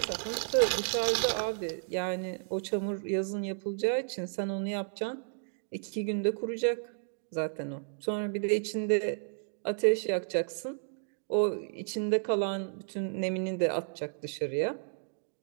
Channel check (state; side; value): silent; left; digital silence